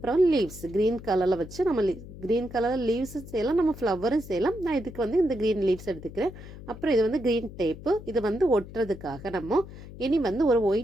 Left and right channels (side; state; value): left; noise; hum, 15 dB below the sound